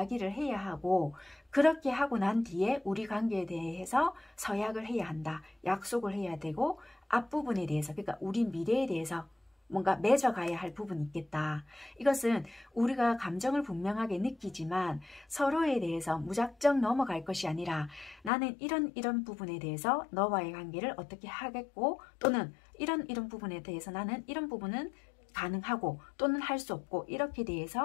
해야 하고 그렇게 하고 난 뒤에 우리 관계에 대해서 서약을 해야 한다. 약속을 해야 되고 앞부분에 대해서 그러니까 우리 미래에 대해서 뭔가 맺어가야 할 부분이 있겠다. 이것은 우리가 감정을 분명하게 느끼지만 서로에 대해서 무작정 넘어갈 것이 아니라 나는 이런 부분에 대해서 너와의 관계를 어떻게 하겠고 또는 이런 부분에 대해서 나는 이런 부분은 가능하고 또는 할 수 없고 이렇게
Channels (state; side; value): drops out; right; at 18.3 s